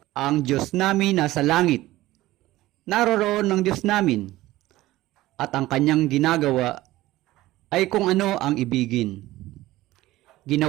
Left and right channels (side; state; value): left; quieter; 16.9 dB